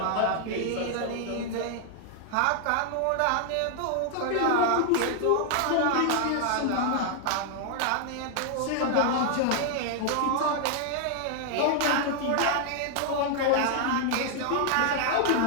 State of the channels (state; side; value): different; both; correlation 0.00